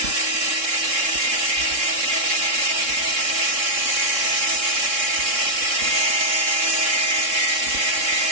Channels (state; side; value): late; left; 3.6 ms